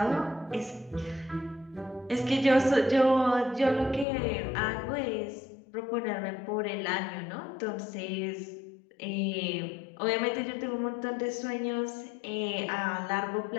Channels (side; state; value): right; drops out; at 4.0 s